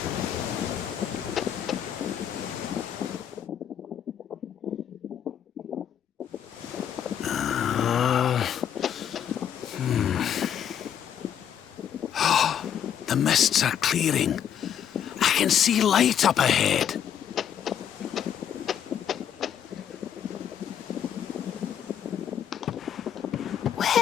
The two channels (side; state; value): right; quieter; 9.2 dB